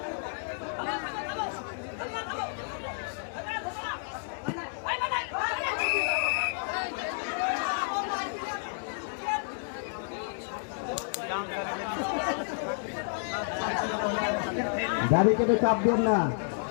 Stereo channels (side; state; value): right; silent; 57 dB below the other